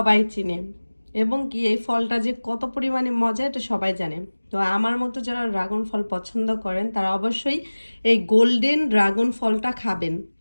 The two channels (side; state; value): both; inverted; correlation -1.00